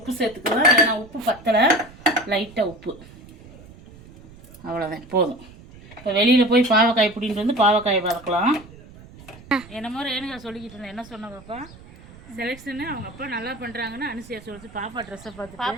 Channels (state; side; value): noise; right; rumble, 20 dB below the sound